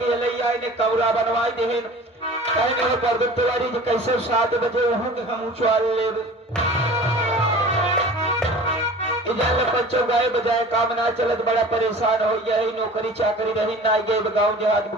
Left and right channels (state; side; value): normal; both; correlation 0.42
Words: लैया ने कौरा बनवाई देहन कहने हो पर तिवारी जी कैसे 7 बजे वहां के हम उछाल लेब। इधर बच्चों गाय बजाय काम ना चलत बड़ा परेशान हो यही नौकरी चाकरी रही ना गए गाँव देहात में